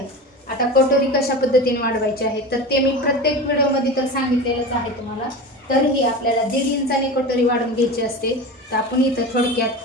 आता कटोरी कशा पद्धतीने वाढवायची आहे तर ते मी प्रत्येक व्हिडिओमध्ये तर सांगितलेलंच आहे तुम्हाला. तरीही आपल्याला 1.5 इंचाने कटोरी वाढवून घ्यायची असते. तर आपण इथं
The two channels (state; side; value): normal; both; correlation 0.29